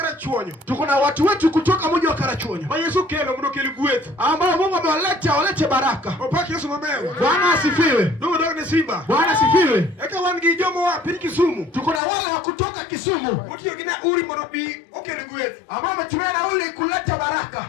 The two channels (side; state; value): right; drops out; at 12.0 s